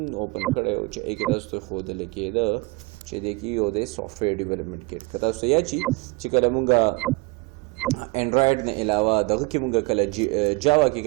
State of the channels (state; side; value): quieter; left; 26.6 dB